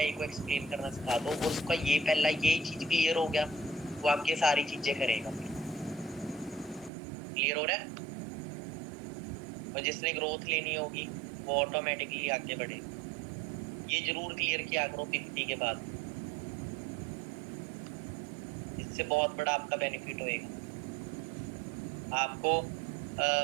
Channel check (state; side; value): drops out; left; at 6.9 s